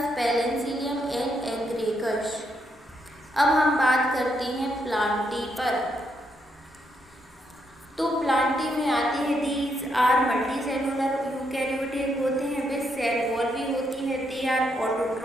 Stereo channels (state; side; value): normal; both; correlation 0.77